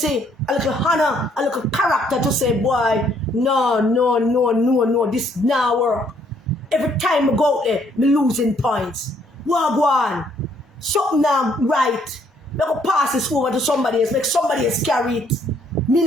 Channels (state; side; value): normal; both; correlation 0.67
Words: a little honor, a little character to say, boy, no, this now work. Every time I go out there, me losing points. Wagwan, something now right. I go pass this over to somebody else, make somebody else carry it. Me